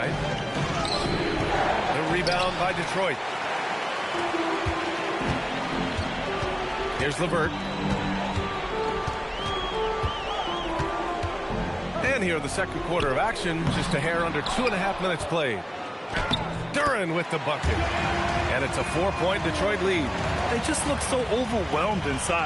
The rebound by Detroit. Here's LeVert. And here in the second quarter of action, just a hair under 2.5 minutes played. Duran with the bucket. And it's a 4-point Detroit lead. They just look so overwhelmed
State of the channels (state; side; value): identical; both; correlation 1.00